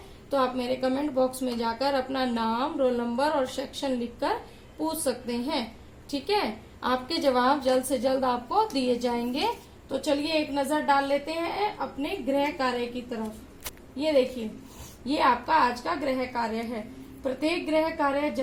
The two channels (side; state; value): both; identical; correlation 1.00